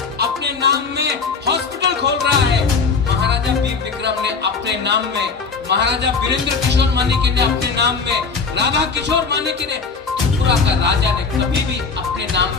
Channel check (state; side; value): quieter; right; 4.9 dB